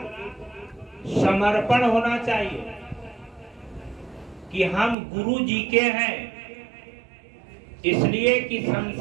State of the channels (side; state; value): left; drops out; at 5.0 s